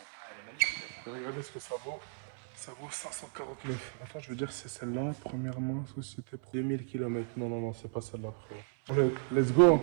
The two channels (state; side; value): silent; left; 55 dB below the other